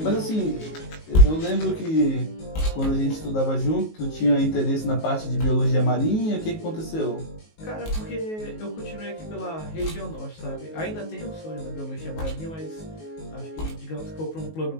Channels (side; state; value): right; late; 19 ms